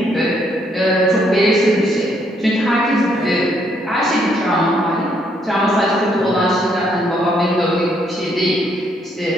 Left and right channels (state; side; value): normal; both; correlation 0.71